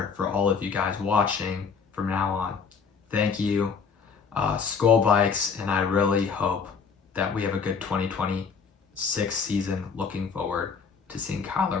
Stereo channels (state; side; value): quieter; right; 5.7 dB